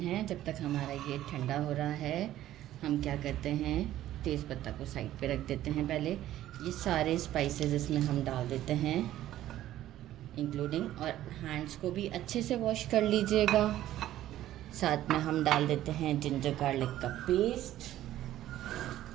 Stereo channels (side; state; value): left; quieter; 13.5 dB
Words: है, जब तक हमारा ये ठंडा हो रहा है, हम क्या करते हैं, तेज़ पत्ता को साइड पे रख देते हैं। पहले ये सारे स्पाइसेस इसमें हम डाल देते हैं, इंक्लूडिंग, और हैंड्स को भी अच्छे से वॉश कर लीजिएगा। साथ में हम डाल देते हैं जिंजर गार्लिक का पेस्ट,